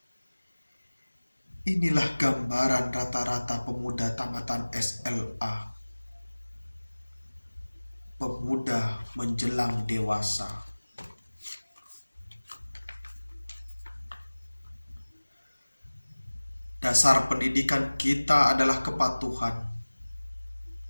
Inilah gambaran rata-rata pemuda tamatan SLA. Pemuda menjelang dewasa. Dasar pendidikan kita adalah kepatuhan,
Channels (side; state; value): both; inverted; correlation -1.00